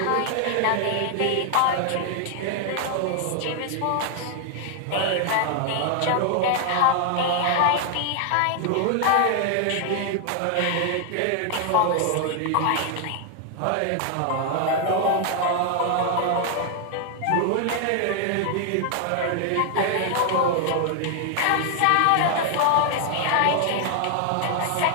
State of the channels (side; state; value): both; different; correlation 0.00